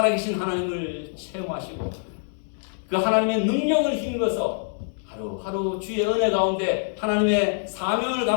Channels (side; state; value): right; silent; digital silence